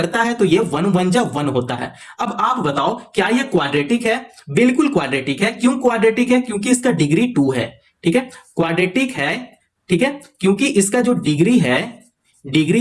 है तो ये 1 1 जा 1 होता है। अब आप बताओ क्या ये क्वाड्रेटिक है? बिल्कुल क्वाड्रेटिक है। क्यों क्वाड्रेटिक है? क्योंकि इसका डिग्री 2 है। ठीक है, क्वाड्रेटिक है। ठीक है, क्योंकि इसका जो डिग्री है, डिग्री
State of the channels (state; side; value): identical; both; correlation 1.00